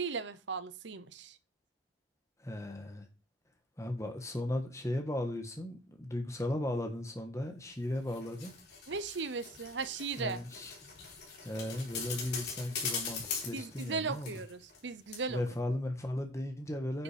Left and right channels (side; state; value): both; normal; correlation 0.53